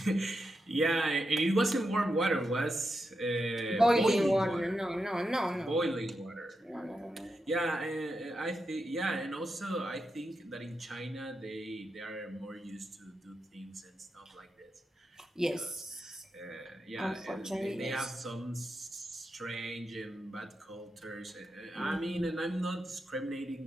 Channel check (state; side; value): normal; both; correlation 0.87